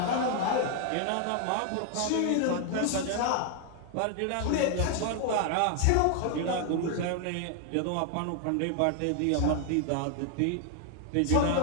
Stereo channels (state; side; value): different; both; correlation 0.00